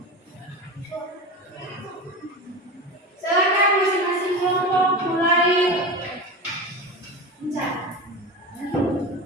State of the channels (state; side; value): normal; both; correlation 0.26